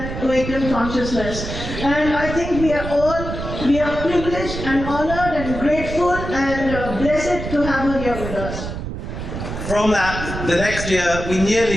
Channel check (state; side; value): noise; right; rumble, 7 dB below the sound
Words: awakened consciousness. And I think we are privileged and honored and grateful and blessed to have her here with us. From that, the next year, we